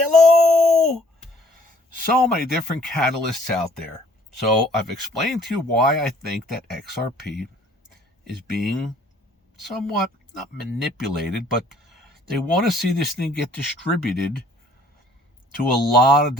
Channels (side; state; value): both; normal; correlation 0.58